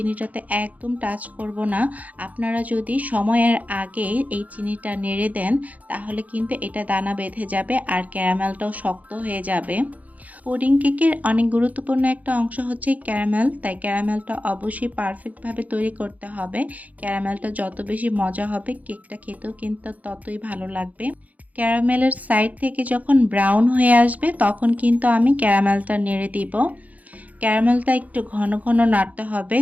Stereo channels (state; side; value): late; left; 0.075 ms